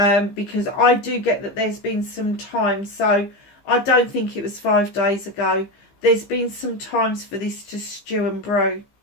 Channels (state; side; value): late; right; 15 ms